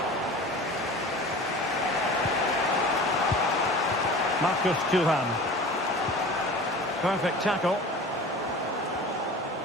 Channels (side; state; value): both; normal; correlation 0.39